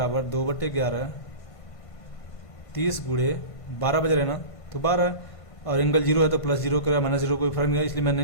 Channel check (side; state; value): right; late; 1.5 ms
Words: 2/11, 30 गुणे 12 बज रहे ना, तो 12, और एंगल 0 है तो +0 करेगा -0 कोई फर्क नहीं है, इसलिए मैं